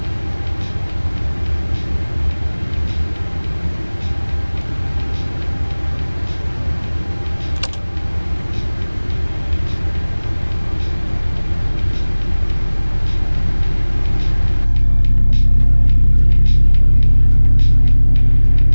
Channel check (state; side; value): inverted; both; correlation -1.00